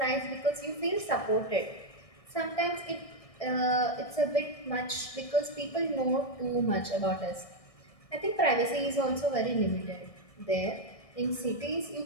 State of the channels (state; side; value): late; right; 1.6 ms